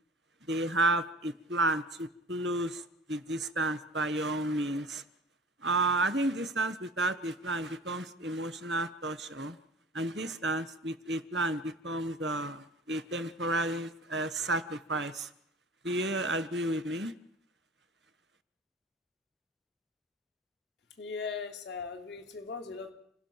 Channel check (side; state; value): both; normal; correlation 0.42